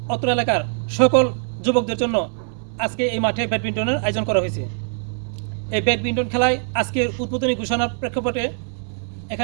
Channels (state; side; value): silent; left; 64 dB below the other